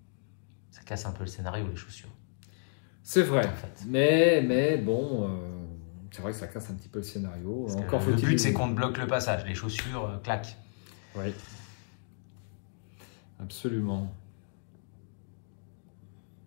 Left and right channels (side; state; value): right; silent; digital silence